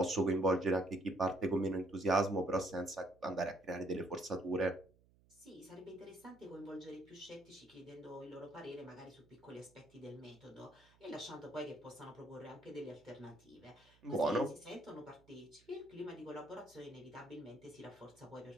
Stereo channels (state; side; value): noise; right; hum, 29 dB below the sound